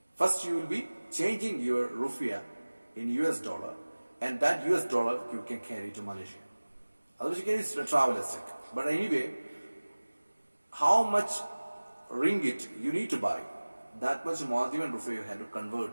First you will be changing your rupiah in US dollar, and that US dollar you can carry to Malaysia. Otherwise you can use travel as check. But anyway, how much ringgit you need to buy, that much Maldivian rupiah you have to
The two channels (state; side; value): inverted; both; correlation -1.00